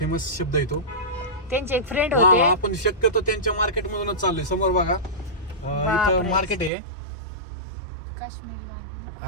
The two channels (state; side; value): drops out; left; at 6.7 s